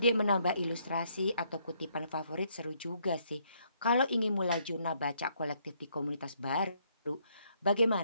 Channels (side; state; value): both; inverted; correlation -0.70